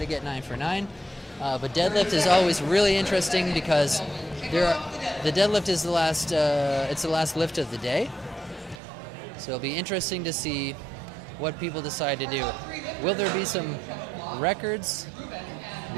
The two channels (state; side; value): drops out; left; at 8.8 s